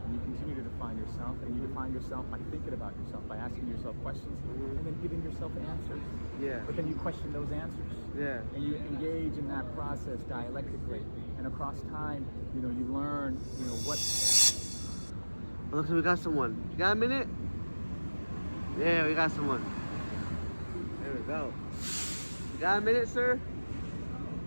and you continue to define yourself, and you define yourself by thinking about yourself, by asking yourself questions, and then giving yourself answers. Yeah. But then you question those answers. Yeah. And you engage in that process dialectically, and across time, you learn, what. Oh, look, we got someone. You got a minute? Yeah, we got someone. There we go. You got a minute, sir?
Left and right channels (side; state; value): both; inverted; correlation -1.00